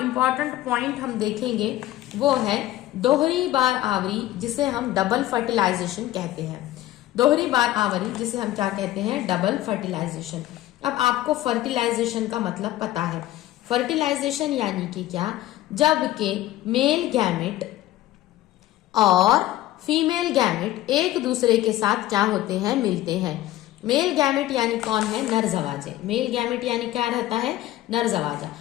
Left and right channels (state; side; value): quieter; right; 14.9 dB